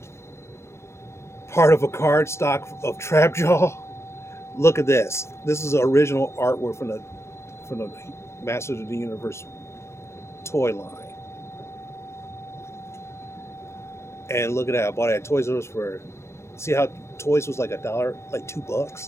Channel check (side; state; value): right; late; 0.13 ms